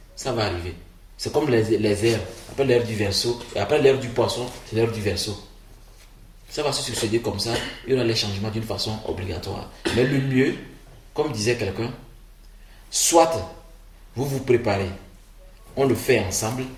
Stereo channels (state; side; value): identical; both; correlation 1.00